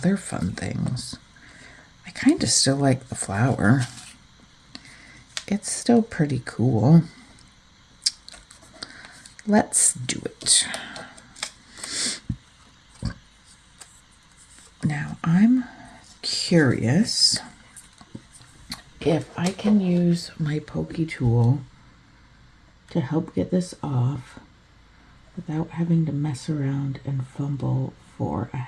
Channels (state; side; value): identical; both; correlation 1.00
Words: fun things? I kind of still like the flower. It's still pretty cool. Let's do it. Now I'm curious if I can use my pokey tool to help get this off without having to mess around and fumble for a